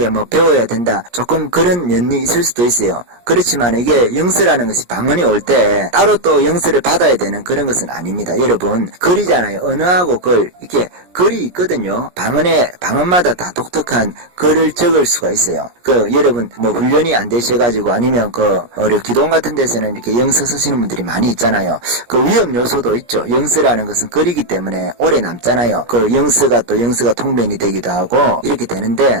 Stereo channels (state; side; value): late; left; 17 ms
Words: 뭐 배워야 된다. 조금 그런 면이 있을 수도 있어요. 그렇지만 이게 영서라는 것이 방언이 올 때 따로 또 영서를 받아야 되는 그런 것은 아닙니다. 여러분, 글이잖아요. 언어하고 글, 이렇게 글이 있거든요. 방언마다 다 독특한 글을 적을 수가 있어요. 여러분 뭐 훈련이 안 되셔가지고 아니면 기도원 같은 데서는 이렇게 영서 쓰시는 분들이 많이 있잖아요. 그 위험 요소도 있죠. 영서라는 것은 글이기 때문에 오래 남잖아요. 영서가 통변이 되기도 하고 이렇게